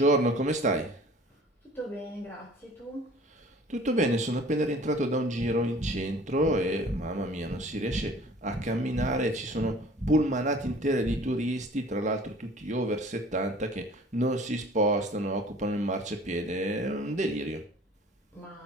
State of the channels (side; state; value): both; normal; correlation 0.49